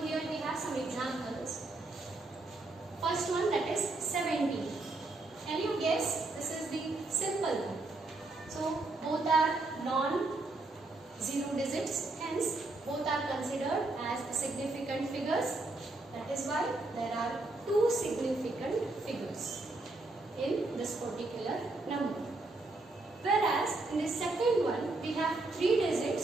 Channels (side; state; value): left; quieter; 3.1 dB